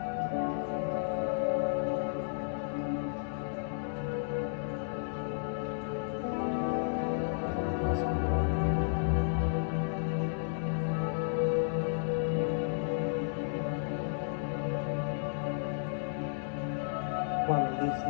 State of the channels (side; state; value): right; silent; digital silence